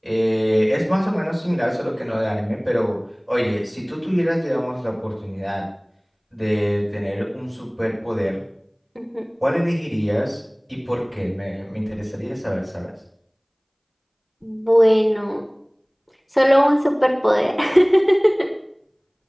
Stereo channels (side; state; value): both; identical; correlation 1.00